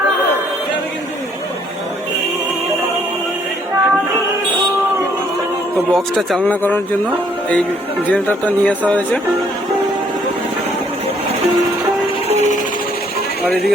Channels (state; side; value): normal; both; correlation 0.66